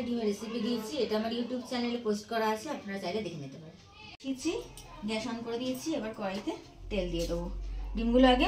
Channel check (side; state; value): both; identical; correlation 1.00